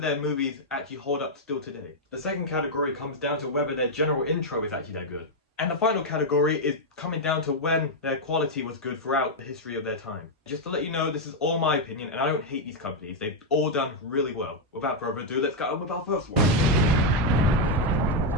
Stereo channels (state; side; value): normal; both; correlation -0.01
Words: their movies actually hold up still today. The second category comes down to whether their general intro is actually that good. And the final category is coming down to when their quality was good throughout the history of their time. Just to let you know, this is all my opinion, and I don't hate these companies. They've all done really well. Without further ado, let's get on with our first one.